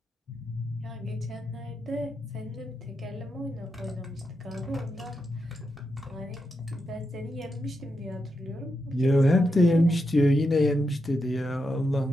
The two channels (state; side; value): normal; both; correlation 0.85